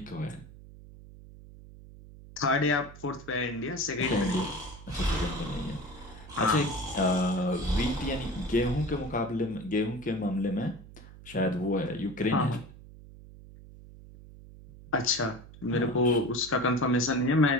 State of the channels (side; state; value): right; noise; hum, 18 dB below the sound